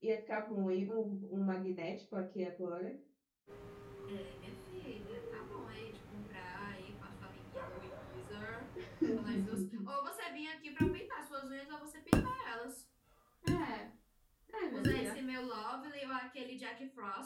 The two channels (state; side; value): identical; both; correlation 1.00